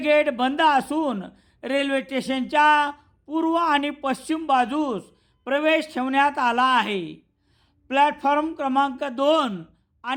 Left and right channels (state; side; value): identical; both; correlation 1.00